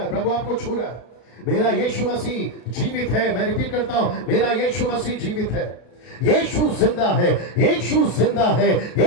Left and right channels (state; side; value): late; right; 33 ms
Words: प्रभु आपको छू रहा है। मेरा यीशु मसीह जीवित है। मैं रिपीट करता हूं, मेरा यीशु मसीह जीवित है। यीशु जिंदा है, यीशु जिंदा है,